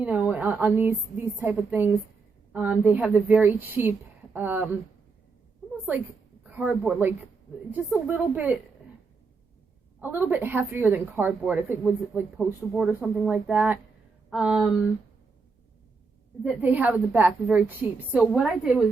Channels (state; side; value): quieter; left; 4.5 dB